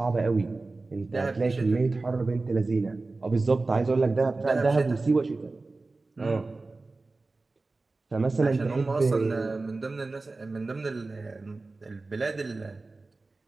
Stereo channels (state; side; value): quieter; left; 3.5 dB